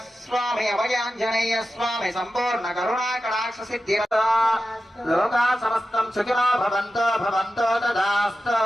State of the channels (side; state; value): both; normal; correlation 0.92